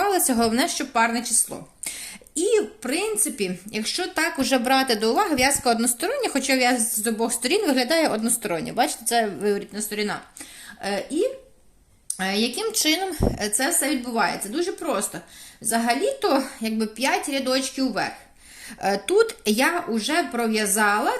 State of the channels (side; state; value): both; identical; correlation 1.00